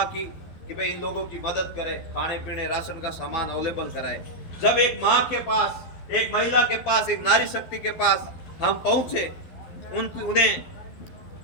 की कि भाई इन लोगों की मदद करें, खाने पीने राशन का सामान अवेलेबल कराए। जब एक माँ के पास, एक महिला के पास, एक नारी शक्ति के पास हम पहुंचे, उन्हें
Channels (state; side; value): late; right; 12 ms